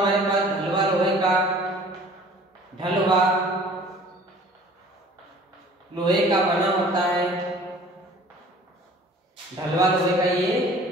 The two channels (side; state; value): both; normal; correlation 0.49